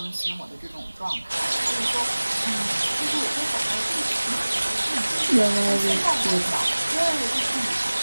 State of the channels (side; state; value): both; inverted; correlation -1.00